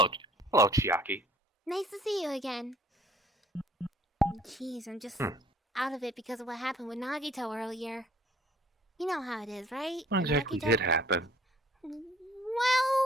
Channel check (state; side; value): normal; both; correlation 0.56